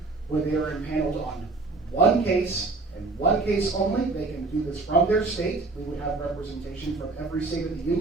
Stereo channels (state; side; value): quieter; left; 3.6 dB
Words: where they are impaneled on one case, and one case only. They can do this from their state. We would have representation from every state of the